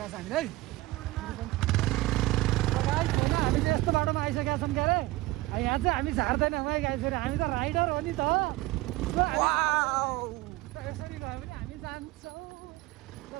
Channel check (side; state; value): left; quieter; 18.9 dB